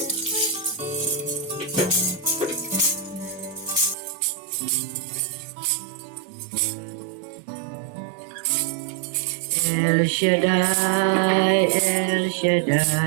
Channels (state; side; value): drops out; left; at 4.0 s